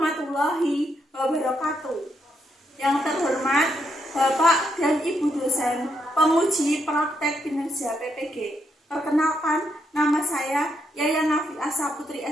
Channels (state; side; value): normal; both; correlation 0.78